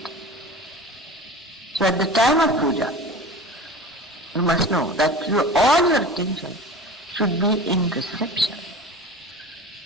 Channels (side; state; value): both; normal; correlation 0.35